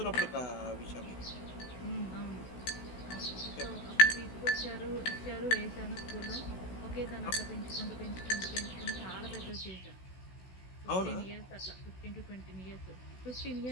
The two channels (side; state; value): right; late; 16 ms